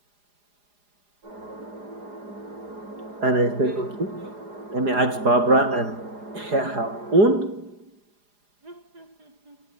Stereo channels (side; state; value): left; late; 4.9 ms